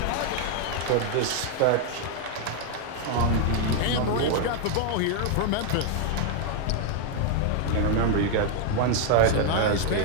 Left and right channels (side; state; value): both; different; correlation 0.00